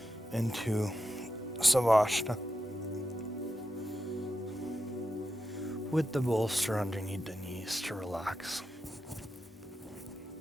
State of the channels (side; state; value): both; normal; correlation 0.89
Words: into Savasana with the bolster underneath the knees to relax.